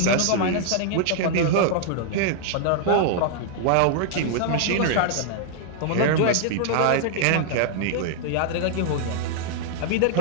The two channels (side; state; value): both; different; correlation -0.01